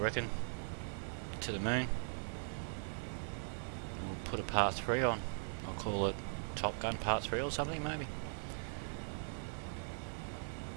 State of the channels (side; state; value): left; silent; digital silence